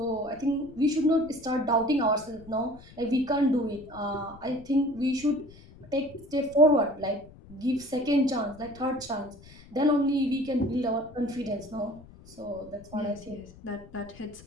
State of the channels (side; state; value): left; noise; rumble, 21 dB below the sound